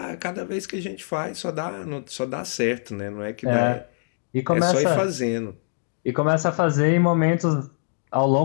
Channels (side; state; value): right; silent; digital silence